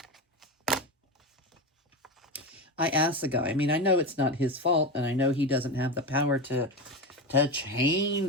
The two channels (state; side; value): normal; both; correlation 0.19